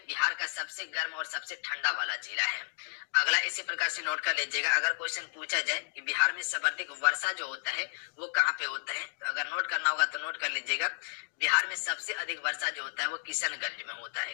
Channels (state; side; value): silent; right; 56 dB below the other